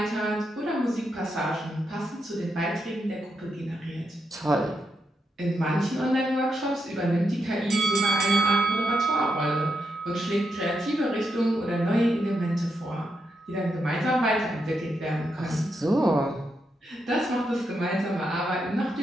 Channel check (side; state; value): both; normal; correlation 0.83